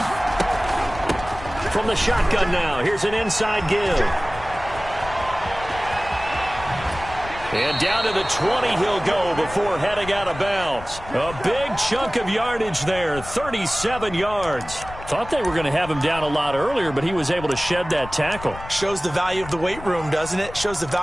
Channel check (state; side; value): noise; left; rumble, 14 dB below the sound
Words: From the shotgun now, here's an inside give. And down to the 20 he'll go before heading out of bounds. A big chunk of yardage there, 37 yards. Thought they were going to have him down a lot earlier, but he was able to shed that tackle. Shows the value of the weight room, doesn't it? Shows the